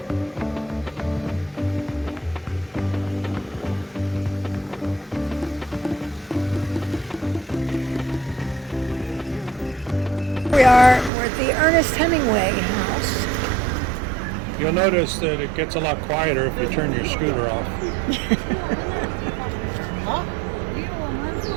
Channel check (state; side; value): drops out; left; at 11.1 s